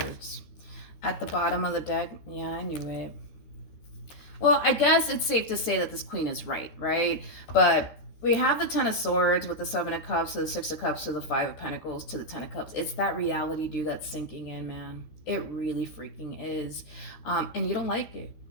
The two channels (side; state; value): right; late; 13 ms